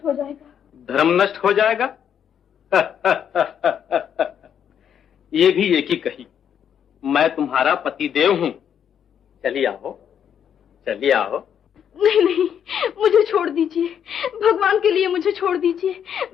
हो जाएगा। धर्म नष्ट हो जाएगा? ये भी एक ही कही। मैं तुम्हारा पतिदेव हूं। चलिए आओ, चलिए आओ। नहीं नहीं, मुझे छोड़ दीजिए, भगवान के लिए मुझे छोड़ दीजिए।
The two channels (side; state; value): right; quieter; 8.6 dB